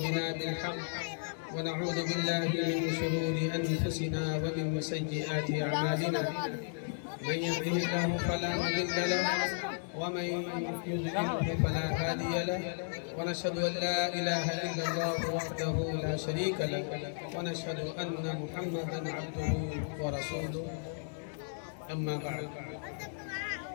بالحق ونعوذ بالله من شرور أنفسنا ومن سيئات أعمالنا من يهده الله فلا مضل له ومن يضلل فلا هادي له ونشهد أن لا إله إلا الله وحده لا شريك له ونشهد أن محمدا عبده ورسوله أما بعد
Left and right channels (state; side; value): silent; right; 55 dB below the other